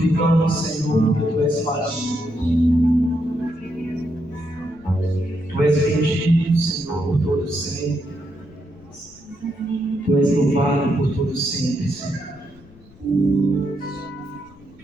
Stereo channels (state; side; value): noise; left; rumble, 25 dB below the sound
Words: Senhor, porque Tu és maravilhoso. Tu és bendito, Senhor, por todo sempre. Tu és louvado por todo sempre, Senhor.